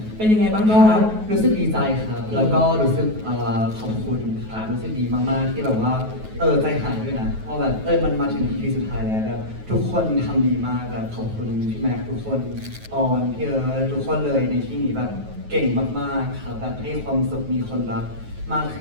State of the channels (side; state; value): left; late; 9.3 ms